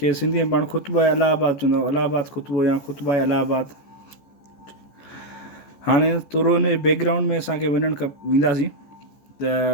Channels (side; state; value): right; late; 14 ms